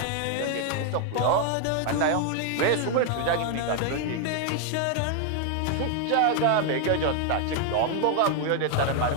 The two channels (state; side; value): different; both; correlation 0.00